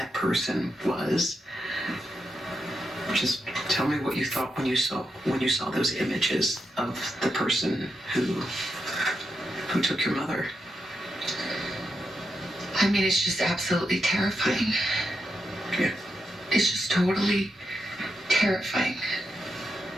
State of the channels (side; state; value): both; normal; correlation 0.85